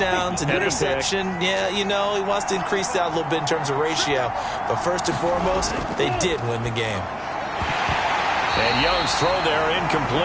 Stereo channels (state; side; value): identical; both; correlation 1.00